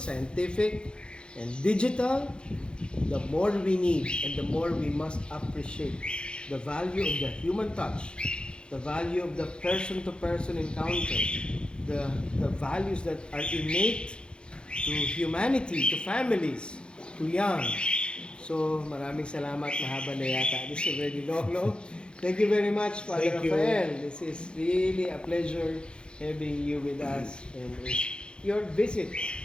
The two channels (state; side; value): late; right; 0.053 ms